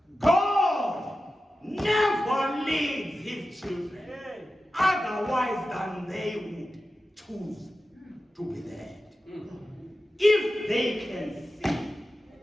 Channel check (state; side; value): normal; both; correlation 0.93